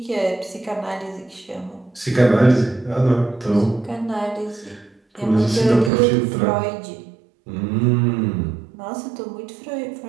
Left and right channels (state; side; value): drops out; left; at 5.9 s